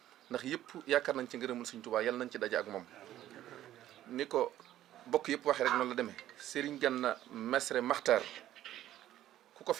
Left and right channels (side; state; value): left; quieter; 13.0 dB